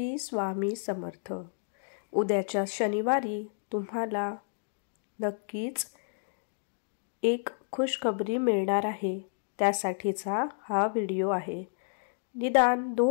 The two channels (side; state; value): right; silent; digital silence